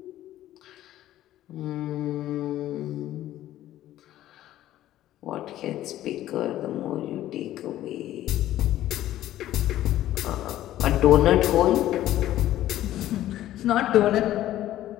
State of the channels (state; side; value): quieter; right; 13.6 dB